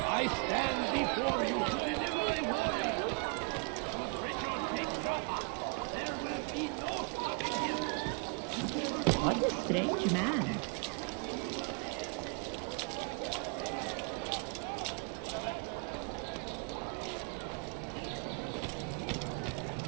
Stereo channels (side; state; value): left; quieter; 35.8 dB